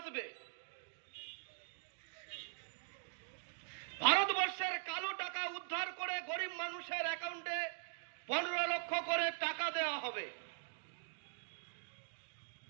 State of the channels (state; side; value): silent; left; digital silence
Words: ভারতবর্ষের কালো টাকা উদ্ধার করে গরিব মানুষের অ্যাকাউন্টে 15 লক্ষ করে টাকা দেওয়া হবে।